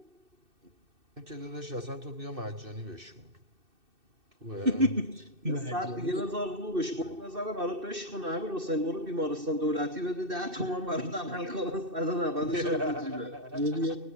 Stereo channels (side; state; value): left; late; 2.6 ms